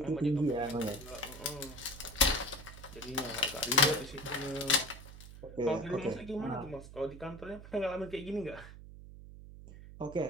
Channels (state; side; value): noise; right; hum, 15 dB below the sound